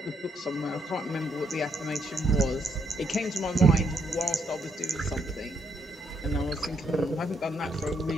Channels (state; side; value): normal; both; correlation 0.74